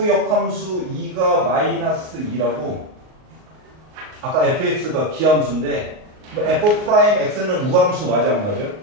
역함수 2가 마이너스 2라고 아까 fx가 기함수인데 F 프라임 x는 우함수 맞아 안 맞아?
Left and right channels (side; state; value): left; late; 38 ms